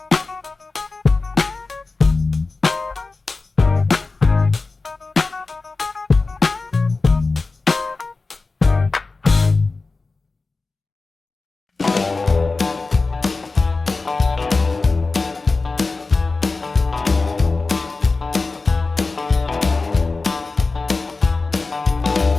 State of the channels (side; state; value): right; quieter; 3.8 dB